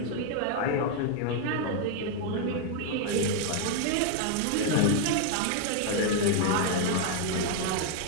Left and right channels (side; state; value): both; different; correlation 0.00